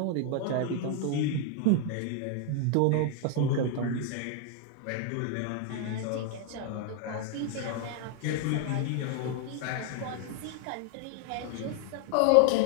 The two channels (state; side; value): different; both; correlation 0.00